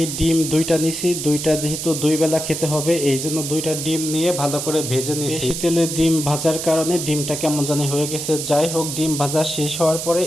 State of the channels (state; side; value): noise; right; hiss, 5 dB below the sound